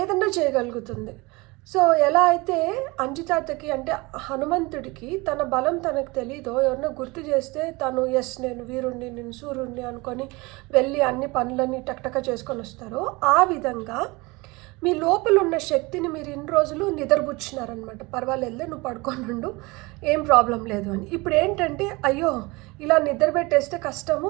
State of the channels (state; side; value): quieter; left; 24.2 dB